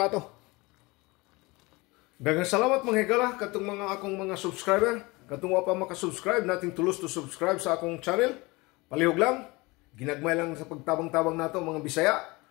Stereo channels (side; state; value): right; quieter; 23.8 dB